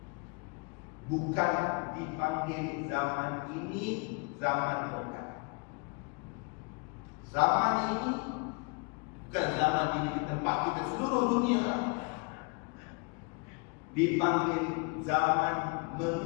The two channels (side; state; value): right; quieter; 31.1 dB